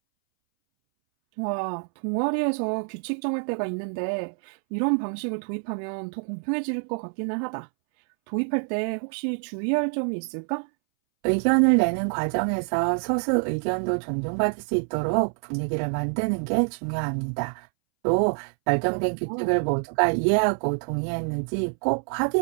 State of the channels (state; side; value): silent; left; 61 dB below the other